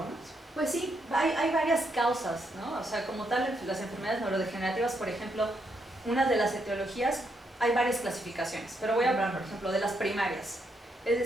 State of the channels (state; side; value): normal; both; correlation 0.78